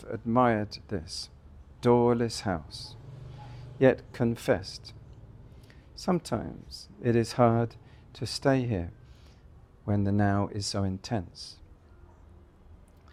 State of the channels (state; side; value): identical; both; correlation 1.00